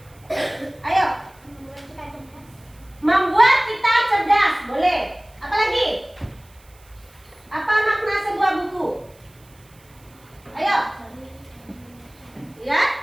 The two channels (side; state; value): right; noise; hiss, 29 dB below the sound